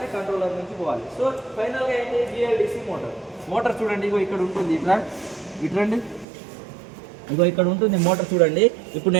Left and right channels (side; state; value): left; drops out; at 6.2 s